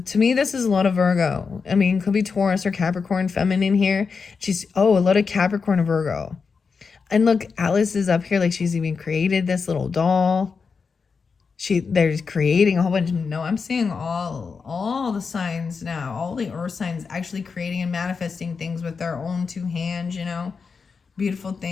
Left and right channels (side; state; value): right; quieter; 5.2 dB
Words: me, this is a lot of Virgo. I mean, could be Taurus or Capricorn feminine here. A lot of Capricorn and Virgo. And look, Alice is up here, like she's even created this little doll. They're creating a whole bunch. No, I'm seeing all the signs now, all the earth signs actually creating and manifesting things with their own 2 hands, you know, beautiful